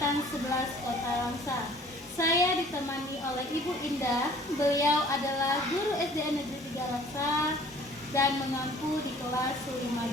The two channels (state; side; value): normal; both; correlation 0.53